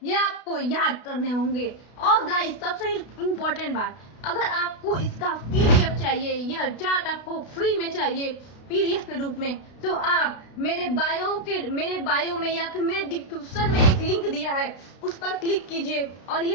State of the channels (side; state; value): right; late; 32 ms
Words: ये आपको याद करने होंगे। और गाइस, सबसे इम्पोर्टेंट बात, अगर आपको इसका पीडीएफ चाहिए, यह चार्ट आपको फ्री में चाहिए पीडीएफ के रूप में, तो आप मेरे बायो में या फिर मेरे डिस्क्रिप्शन में एक लिंक दिया है, उस पर क्लिक कीजिए और